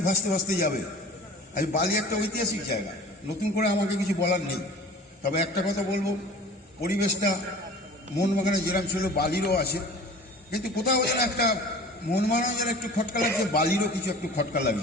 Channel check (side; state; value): both; normal; correlation 0.42